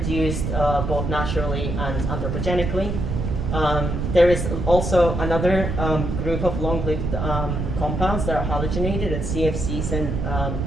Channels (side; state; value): right; noise; rumble, 2 dB below the sound